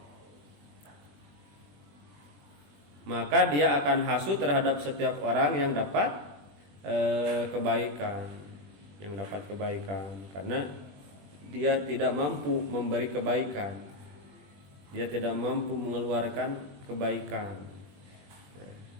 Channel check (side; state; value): left; late; 21 ms